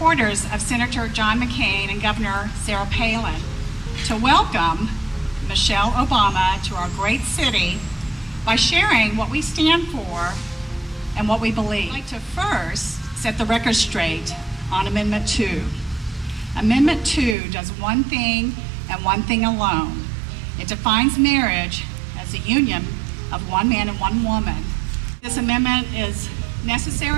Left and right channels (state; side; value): drops out; left; at 17.4 s